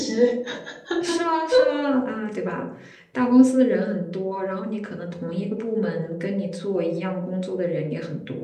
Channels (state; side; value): identical; both; correlation 1.00